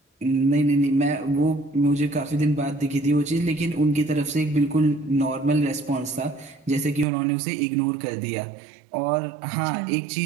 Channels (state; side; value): drops out; left; at 7.1 s